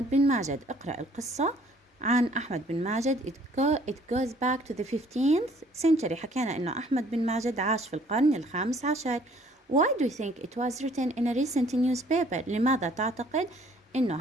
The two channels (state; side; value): normal; both; correlation 0.59